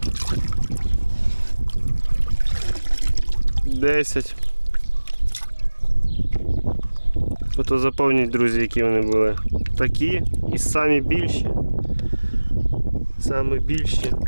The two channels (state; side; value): inverted; both; correlation -1.00